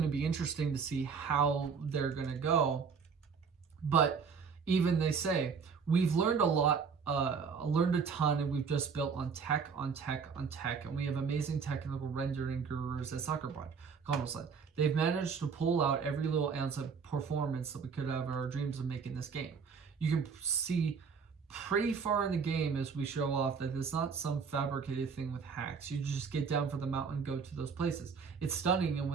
to be interesting to see how they're going to go. But even they say, we've learned a lot, learned a ton, and we've just built on tech, and we have amazing technical rendering gurus at Sucker Punch. Connell said, they've managed to pull out every little ounce of performance that we could have our dreams of making this game. You can see pretty far in the game as we show off that it's not some fabricated thing with hacks. You just get down for the mountain and go to those places. It's stunning, and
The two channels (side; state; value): left; quieter; 5.8 dB